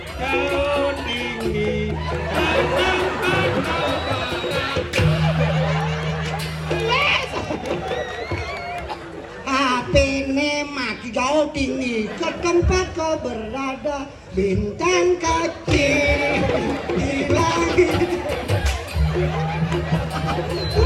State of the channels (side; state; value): both; identical; correlation 1.00